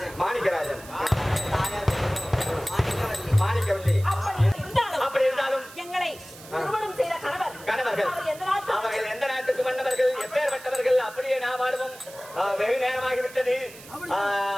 மாணிக்கராஜன். தாயார் மாணிக்கவல்லி. மாணிக்கவல்லி. அப்படி இருந்தாலும் எங்களை திருமணம் செய்த கணவர்கள் அவர்கள் எந்த நாட்டுக்கு மன்னவர்கள், எப்பேற்பட்டவர்கள்? அப்படியே நாம் வாடுவோம். வெகு நேரமாகிவிட்டது.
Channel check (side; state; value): right; noise; hiss, 18 dB below the sound